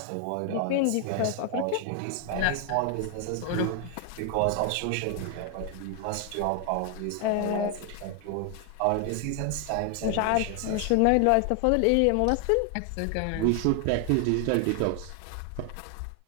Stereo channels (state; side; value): different; both; correlation 0.00